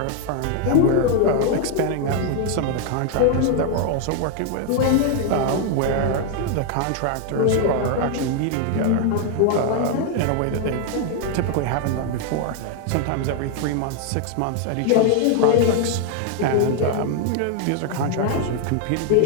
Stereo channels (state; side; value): different; both; correlation 0.00